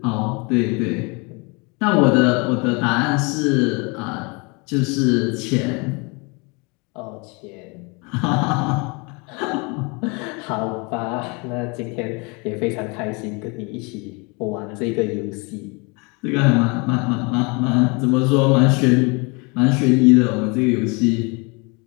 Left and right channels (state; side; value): quieter; right; 30.1 dB